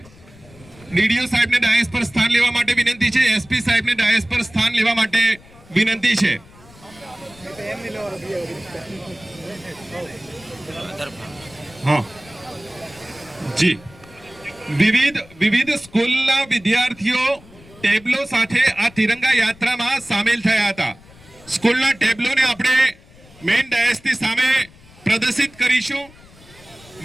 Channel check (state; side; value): noise; left; rumble, 24 dB below the sound